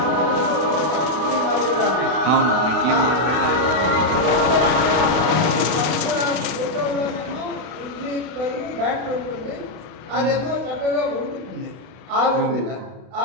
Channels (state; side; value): late; left; 32 ms